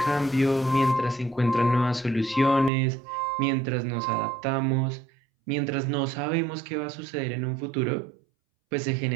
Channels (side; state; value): left; drops out; at 2.7 s